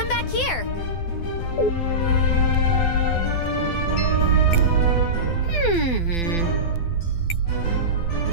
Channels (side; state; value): right; late; 12 ms